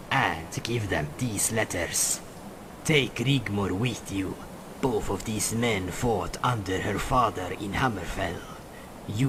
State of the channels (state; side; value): identical; both; correlation 1.00